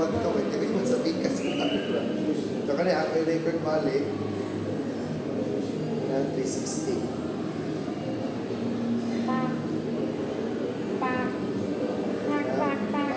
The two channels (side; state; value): both; identical; correlation 1.00